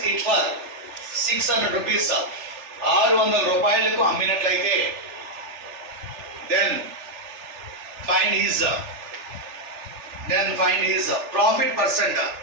it for 600 rupees, 600 రూపాయలకు అమ్మినట్లయితే then find his profit percent.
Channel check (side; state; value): left; late; 3.4 ms